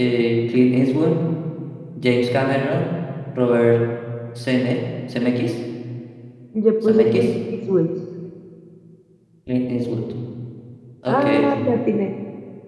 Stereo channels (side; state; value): both; identical; correlation 1.00